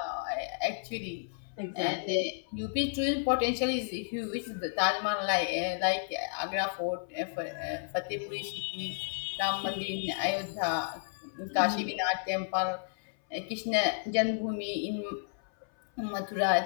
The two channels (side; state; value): right; silent; 56 dB below the other